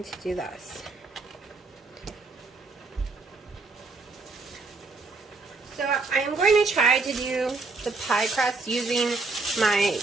to do this. So I am going to try to do the pie crust using my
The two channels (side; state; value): left; quieter; 3.8 dB